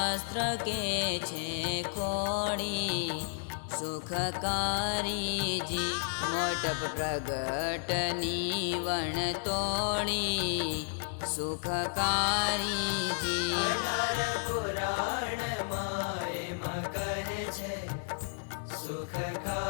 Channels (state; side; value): silent; right; digital silence